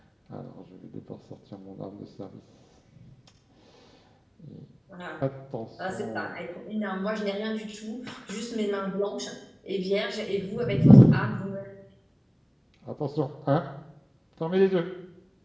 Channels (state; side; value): identical; both; correlation 1.00